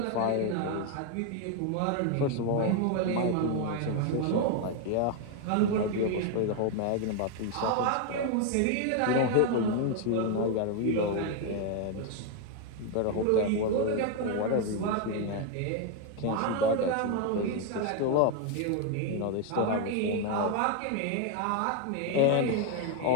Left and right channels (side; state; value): both; different; correlation 0.01